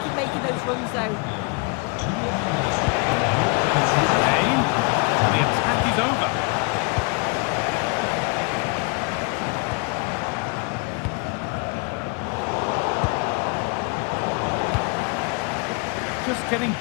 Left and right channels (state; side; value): quieter; right; 31.7 dB